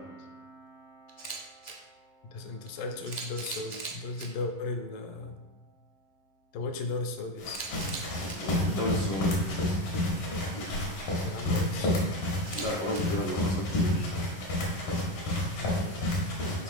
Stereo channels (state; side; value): late; right; 11 ms